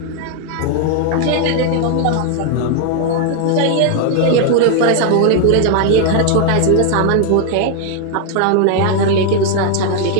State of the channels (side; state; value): both; different; correlation 0.00